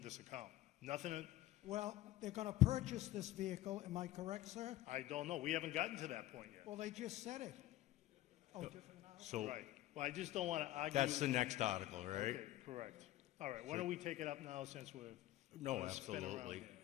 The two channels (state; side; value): quieter; right; 15.2 dB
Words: account. Nothing, Well, they're going to purchase this vehicle, am I correct, sir? I don't know, we haven't gotten to that point yet. Well, they just said it. Oh, different now? So Right, well, I just don't want to argue. that's the next article, right? Okay, correct. All right, why don't we take it up now since we're. No, gonna spin around absolutely.